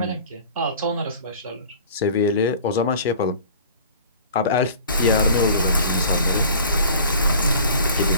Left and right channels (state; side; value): inverted; both; correlation -0.45